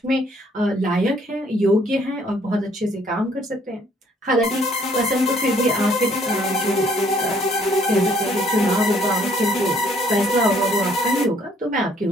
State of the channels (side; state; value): both; normal; correlation 0.63